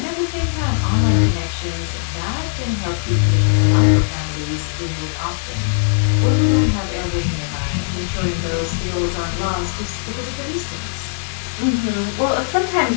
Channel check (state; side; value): silent; right; digital silence